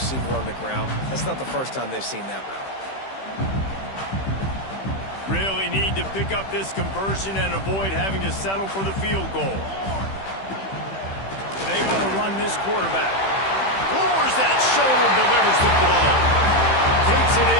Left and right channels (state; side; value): late; right; 15 ms